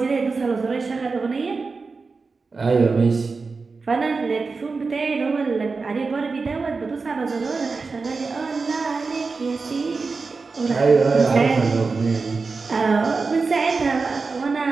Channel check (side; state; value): left; quieter; 4.3 dB